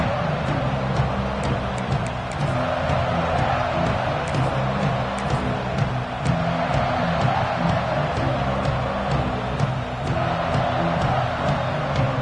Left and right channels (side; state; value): both; identical; correlation 1.00